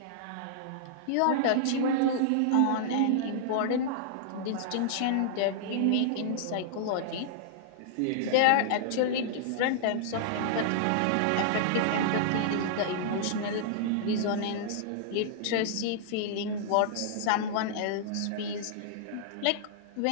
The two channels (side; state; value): both; different; correlation -0.01